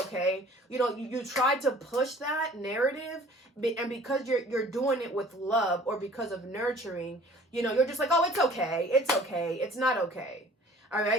You know, you try to push that narrative, and because you're doing it with love or because of nurturing, you know, you're just like, oh, it's okay, it's not okay. All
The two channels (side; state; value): both; normal; correlation 0.50